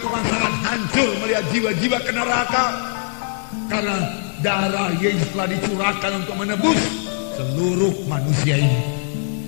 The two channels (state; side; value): silent; right; digital silence